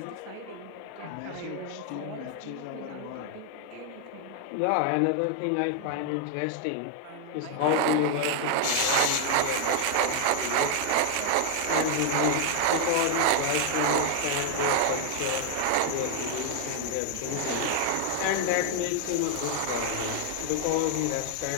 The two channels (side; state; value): both; different; correlation 0.00